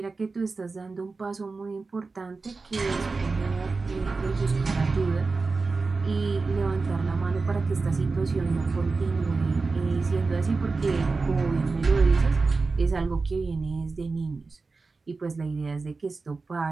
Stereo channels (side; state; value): left; quieter; 4.0 dB